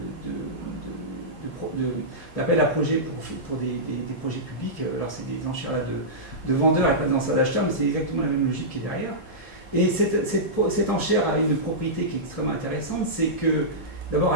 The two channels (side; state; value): both; normal; correlation -0.15